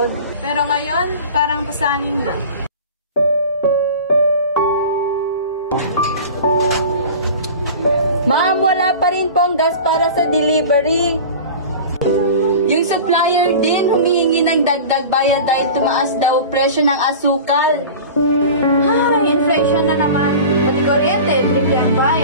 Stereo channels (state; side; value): inverted; both; correlation -0.36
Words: Pero ngayon, parang pasangin na. Ma'am, wala pa rin pong gas para sa delivery. Yung supplier din humihingi ng dagdag bayad dahil tumaas daw presyo ng asukal. Ay, inflation na naman. Pati kuryente, triple ang